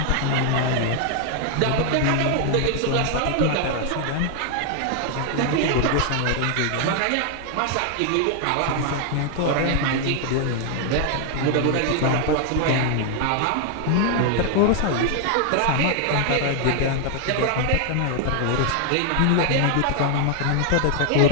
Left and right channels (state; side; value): different; both; correlation 0.00